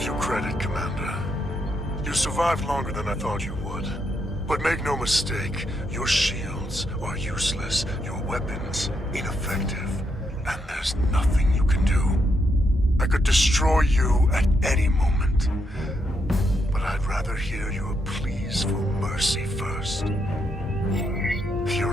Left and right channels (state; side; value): normal; both; correlation 0.79